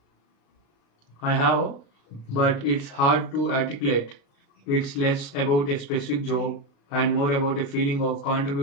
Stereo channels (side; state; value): right; late; 36 ms